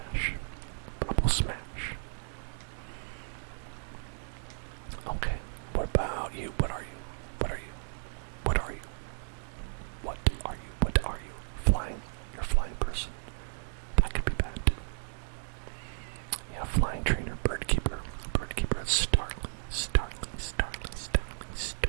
Okay. What about you? What are you? Flying. You're a flying person. That could be bad. Yeah, flying trainer, bird keeper, Starly.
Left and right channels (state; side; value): silent; left; 55 dB below the other